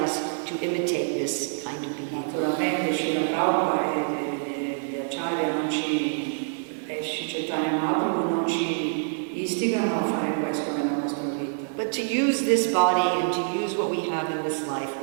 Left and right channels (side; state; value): left; silent; digital silence